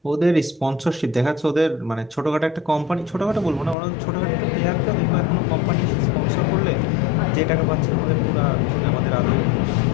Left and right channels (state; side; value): drops out; right; at 3.8 s